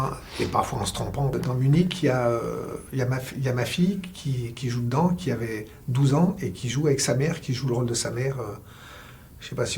et parfois en se trompant. Dans Munich, il y a ma fille qui joue dedans, qui avait 12 ans, et qui joue avec sa mère, qui joue le rôle de sa mère. Je ne sais pas si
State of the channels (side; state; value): both; identical; correlation 1.00